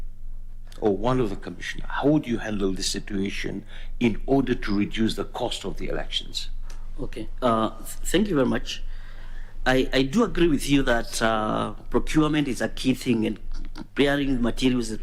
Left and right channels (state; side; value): identical; both; correlation 1.00